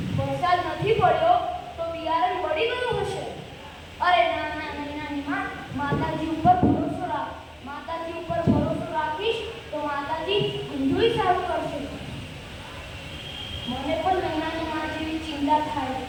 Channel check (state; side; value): identical; both; correlation 1.00